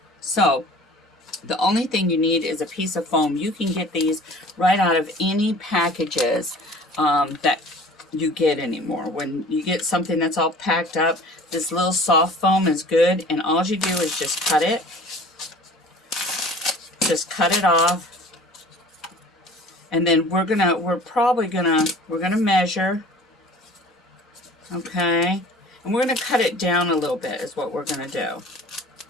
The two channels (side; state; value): both; normal; correlation 0.46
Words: So the only thing you need is a piece of foam. You can get these right out of any packages that you get anymore. When you get something that's all packed up, this little soft foam is good, and all you do is just cut it off, And then we're gonna measure, okay? And we're gonna cut it down a little bit is what we're gonna do.